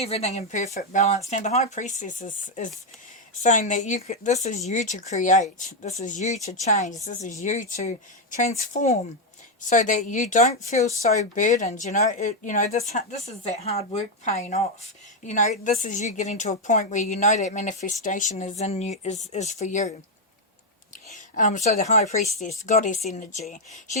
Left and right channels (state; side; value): normal; both; correlation 0.03